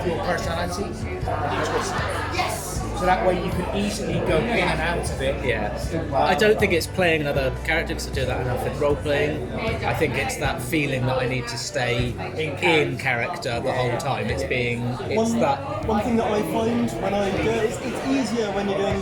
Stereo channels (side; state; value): both; identical; correlation 1.00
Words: your personality and you twist it. So that way you can easily go in and out of it. Yeah, I don't think it's playing another character because I do that enough in role playing. I think it's that feeling that I need to stay in character the whole time. It's that. One thing that I find when I do it, it's easier when you're